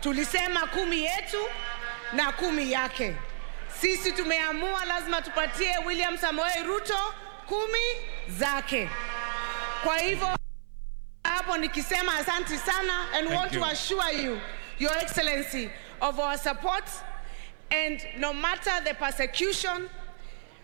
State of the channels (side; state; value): left; silent; 57 dB below the other